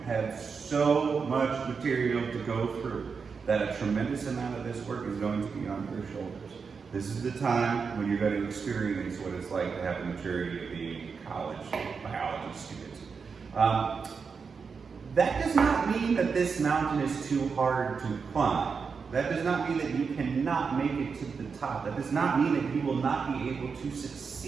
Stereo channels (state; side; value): quieter; left; 5.5 dB